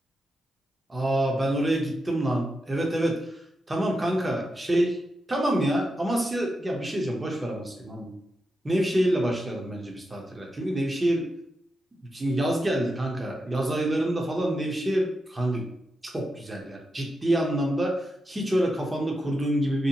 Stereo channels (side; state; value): both; normal; correlation 0.87